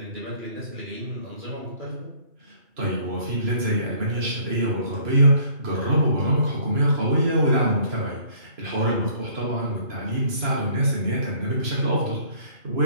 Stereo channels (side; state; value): left; late; 2.9 ms